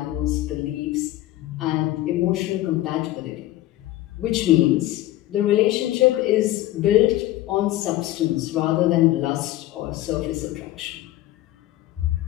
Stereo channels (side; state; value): right; quieter; 15.5 dB